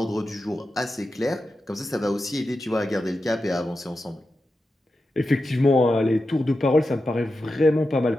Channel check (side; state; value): both; normal; correlation 0.90